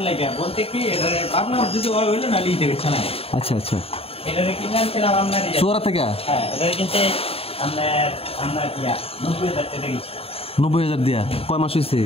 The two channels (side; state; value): right; late; 0.28 ms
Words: বলতে কি, ভাবলাম যদি হইলো না লিখতে পারছে না। আচ্ছা আচ্ছা, এটা কিনেছিলাম আপনার চোরা থেকে। হ্যাঁ, এটা কিন্তু আপনার 90,000 টাকা দিয়েছি। 90,000 দিয়া? কয় মাস হয়েছে?